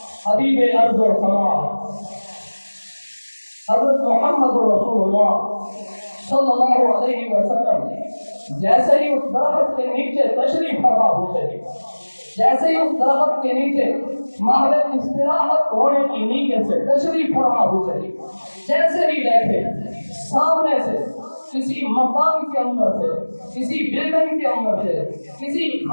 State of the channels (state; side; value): inverted; both; correlation -1.00